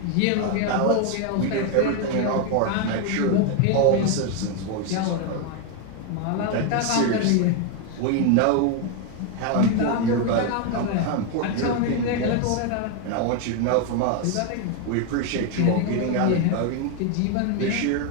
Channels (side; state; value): both; different; correlation 0.01